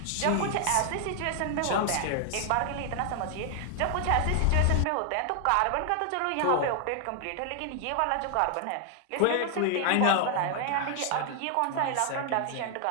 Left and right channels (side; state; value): both; different; correlation 0.00